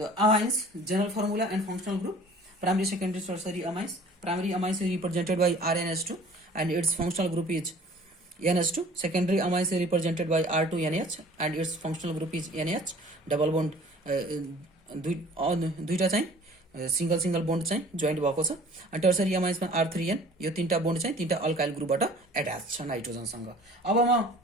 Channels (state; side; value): normal; both; correlation 0.49